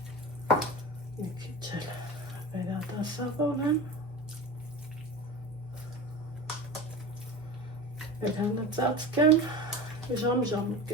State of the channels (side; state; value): right; noise; rumble, 28 dB below the sound